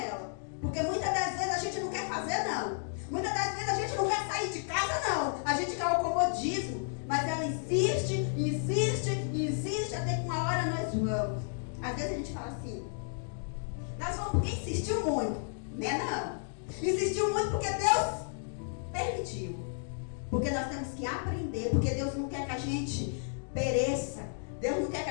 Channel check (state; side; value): silent; right; digital silence